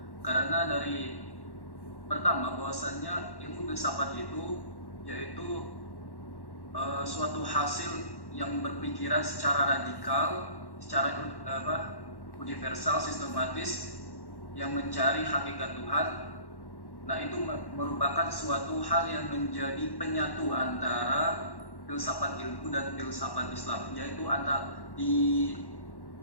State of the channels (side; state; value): right; late; 1.1 ms